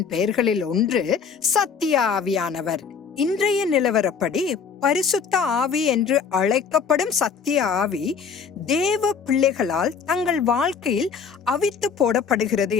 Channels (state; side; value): quieter; right; 6.1 dB